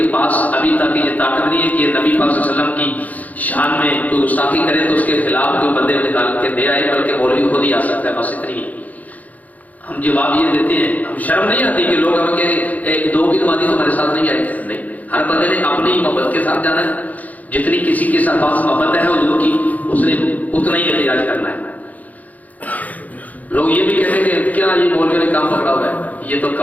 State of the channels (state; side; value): late; right; 0.077 ms